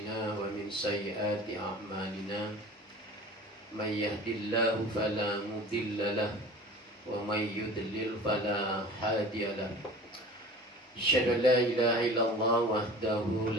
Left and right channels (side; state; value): both; normal; correlation 0.40